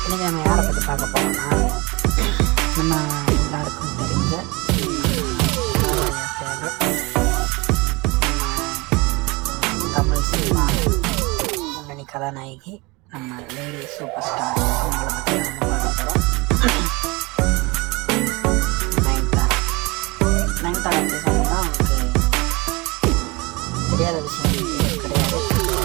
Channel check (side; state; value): left; quieter; 25.2 dB